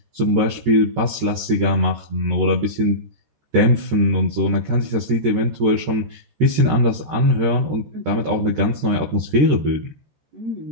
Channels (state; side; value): late; left; 14 ms